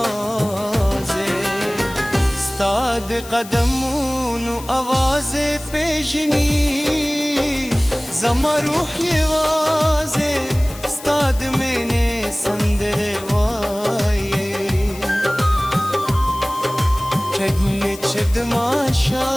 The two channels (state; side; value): noise; left; hiss, 16 dB below the sound